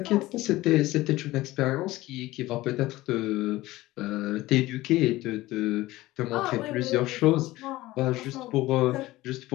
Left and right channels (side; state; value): right; quieter; 17.8 dB